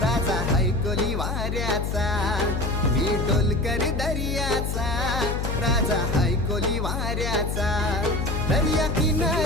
राजा हैकोली वाऱ्याचा। मी ढोलकर दर्याचा राजा हैकोली वाऱ्याचा। दर्या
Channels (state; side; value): noise; left; hum, 2 dB below the sound